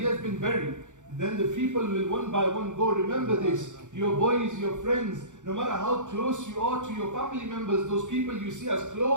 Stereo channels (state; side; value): late; left; 0.85 ms